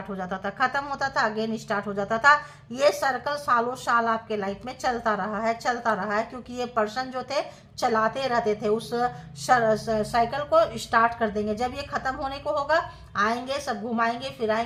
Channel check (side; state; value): both; identical; correlation 1.00